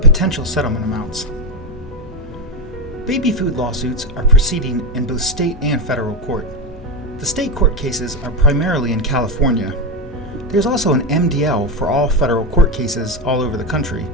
potential settlement amounts. Baby food lawsuits are proceeding in both state and federal court. The state court cases are primarily in California. There's also an MDL for all federal court cases all over the country,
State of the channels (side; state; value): both; normal; correlation 0.13